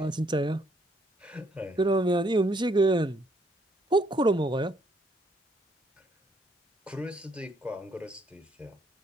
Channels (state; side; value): normal; both; correlation 0.69